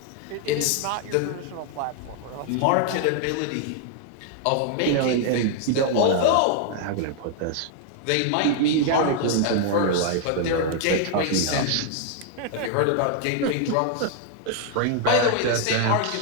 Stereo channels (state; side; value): different; both; correlation 0.00